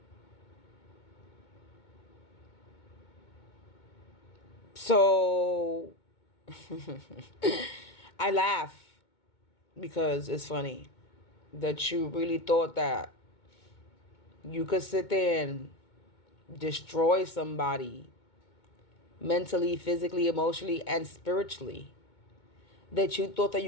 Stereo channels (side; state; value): right; late; 2.2 ms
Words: So I laugh because it's funny that you really thought that you could sit there and destroy somebody mentally, physically, emotionally, and spiritually. That you thought that